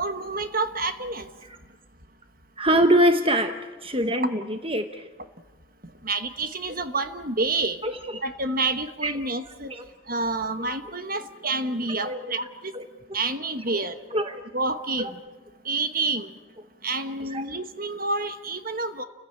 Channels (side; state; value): both; normal; correlation 0.11